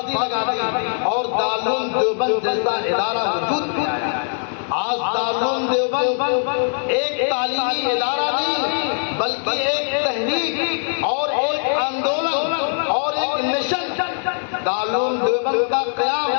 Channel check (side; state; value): right; silent; digital silence